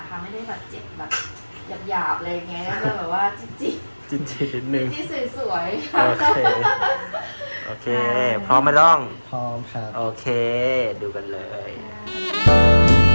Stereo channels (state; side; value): inverted; both; correlation -1.00